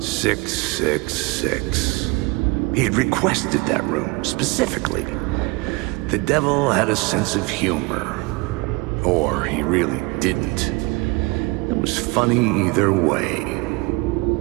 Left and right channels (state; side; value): quieter; left; 26.2 dB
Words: He had requested that room, specifically. The devil had a sense of humor. Or he really didn't. It was funny either way.